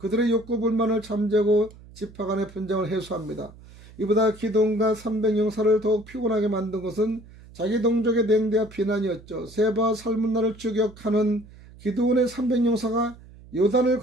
욕구 불만을 잠재고 지파 간의 분쟁을 해소합니다. 이보다 기도원과 300용사를 더욱 피곤하게 만든 것은 자기 동족의 냉대와 비난이었죠. 세바와 살문나를 추격하는 기드온의 300용사가 요단을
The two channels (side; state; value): right; noise; hum, 21 dB below the sound